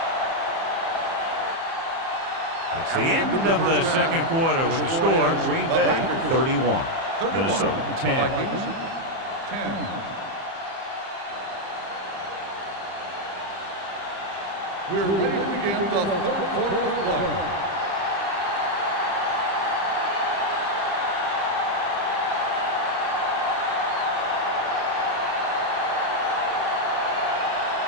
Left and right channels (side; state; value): left; late; 30 ms